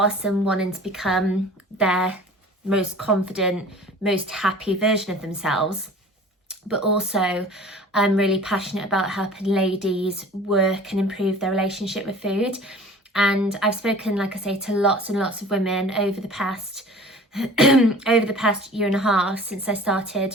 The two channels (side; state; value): both; normal; correlation 0.44